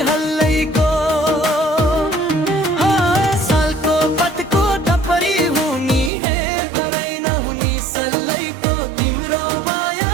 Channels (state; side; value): drops out; left; at 6.1 s